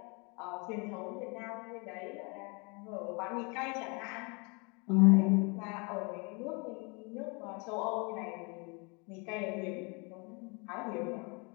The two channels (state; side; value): quieter; right; 31.2 dB